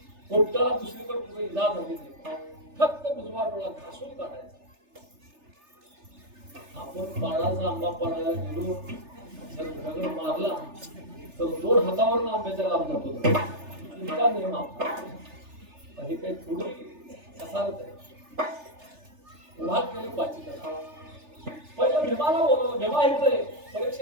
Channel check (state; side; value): late; left; 3.3 ms